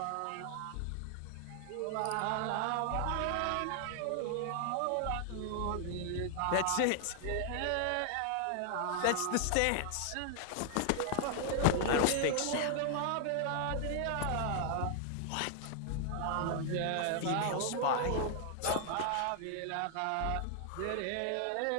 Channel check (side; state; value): both; different; correlation 0.00